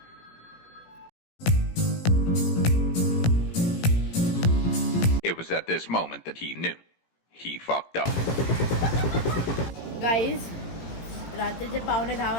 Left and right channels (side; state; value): right; late; 18 ms